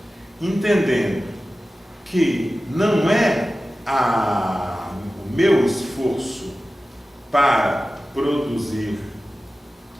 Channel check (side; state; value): both; normal; correlation 0.95